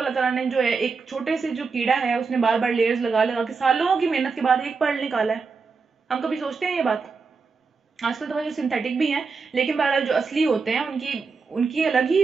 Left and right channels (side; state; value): left; quieter; 4.8 dB